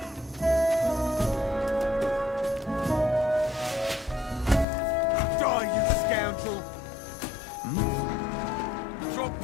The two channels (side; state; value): right; drops out; at 4.7 s